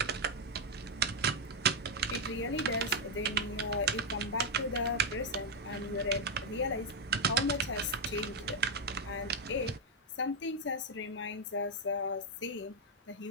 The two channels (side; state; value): both; normal; correlation -0.01